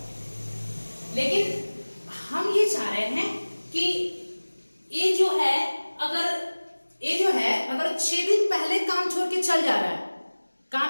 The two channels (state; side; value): inverted; both; correlation -1.00